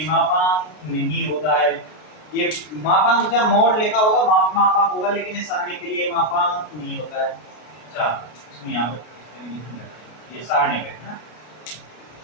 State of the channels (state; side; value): late; right; 33 ms